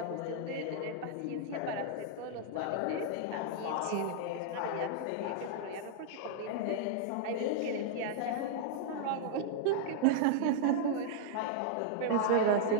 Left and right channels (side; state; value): both; different; correlation -0.01